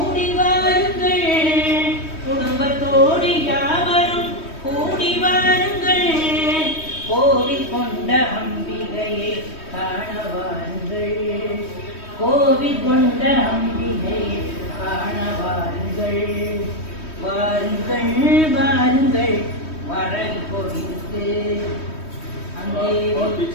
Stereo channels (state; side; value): late; right; 3.2 ms